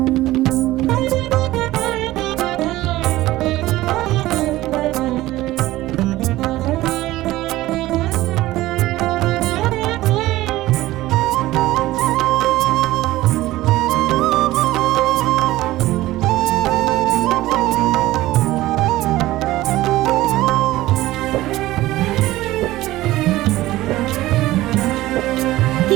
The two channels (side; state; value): left; quieter; 16.8 dB